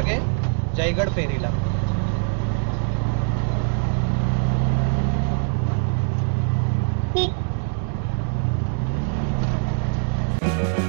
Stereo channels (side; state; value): left; silent; digital silence